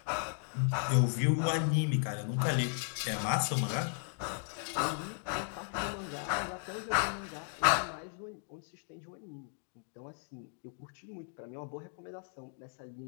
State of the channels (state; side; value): silent; right; 54 dB below the other